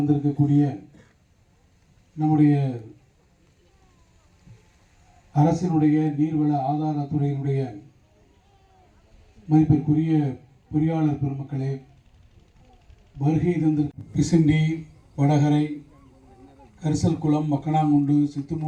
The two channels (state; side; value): identical; both; correlation 1.00